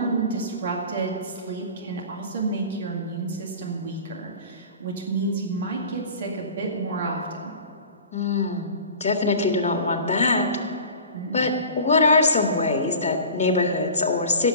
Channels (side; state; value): both; inverted; correlation -0.38